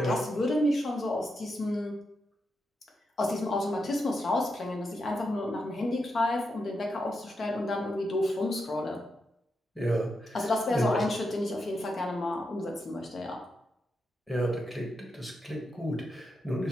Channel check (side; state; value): both; normal; correlation 0.85